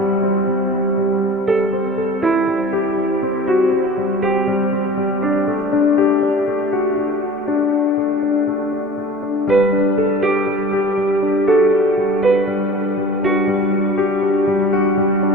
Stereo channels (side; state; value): both; normal; correlation 0.40